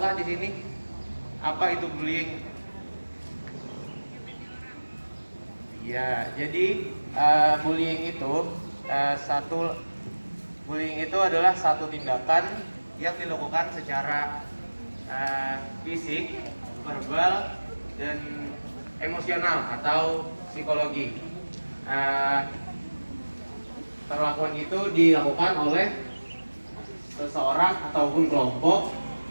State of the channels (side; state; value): both; inverted; correlation -1.00